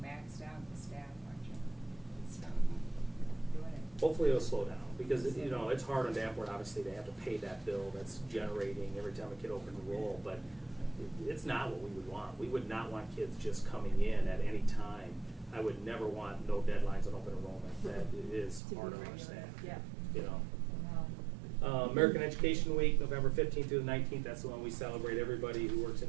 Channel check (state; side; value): drops out; left; at 18.6 s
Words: maxed out, the staff, aren't you? It's doing it. Hopefully it'll slow down, because, you know, it's hard on Danforth, obviously, they have to pay that bill that's generating every time a kid opens a roll, but it's not what we would want. We would not want kids just coming in at any time. I would never want no deadlines on open enrollment. That is hard on our staff. Yeah. You know. American Education Week, November 15th through the 19th, that's the one we celebrate everybody who works